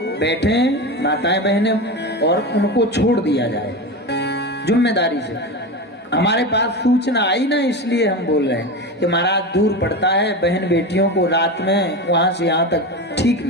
बैठे, माताएं बहनें, और उनको छोड़ दिया जाए जिम्मेदारी से। हमारे पास सूचना आई ना, इसलिए हम बोल रहे हैं कि महाराज दूर पड़ता है, बहन बेटियों को रात में वहां से यहाँ तक ठीक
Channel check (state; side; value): normal; both; correlation 0.23